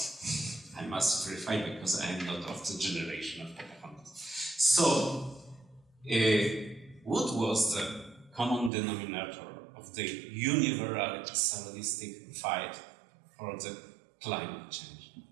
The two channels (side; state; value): left; drops out; at 8.7 s